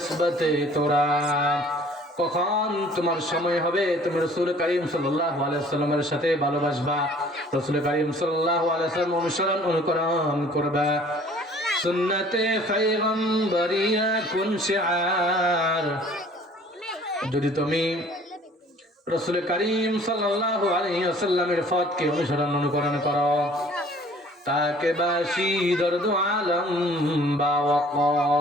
তোরা, কখন তোমার সময় হবে তুমি রাসূল করিম সাল্লাল্লাহু আলাইহি ওয়াসাল্লামের সাথে ভালোবাসবা, রাসূল করিম সাল্লাল্লাহু আলাইহি ওয়াসাল্লাম অনুকরণ করবা। সুন্নতে পয়গম্বরিয়া কুন শিআর, যদি তুমি রাসূল করিম সাল্লাল্লাহু আলাইহি ওয়াসাল্লামের পথকে অনুকরণ করো, তাকে বাসি দর্দ আলম বা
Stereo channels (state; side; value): normal; both; correlation 0.53